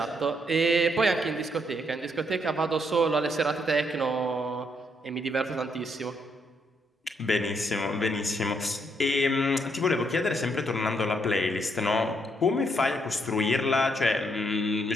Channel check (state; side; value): normal; both; correlation 0.74